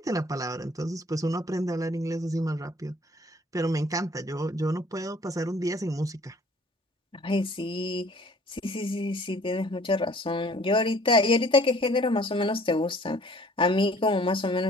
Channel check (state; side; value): normal; both; correlation 0.54